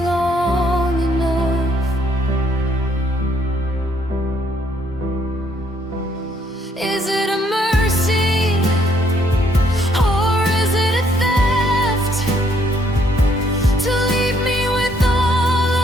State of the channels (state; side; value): normal; both; correlation 0.68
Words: long enough. Is it a mercy, or is it a theft, to leave me with all